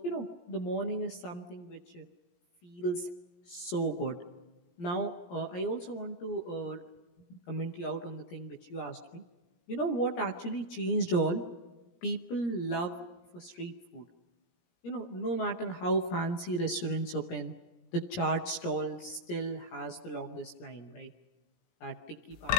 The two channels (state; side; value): late; right; 17 ms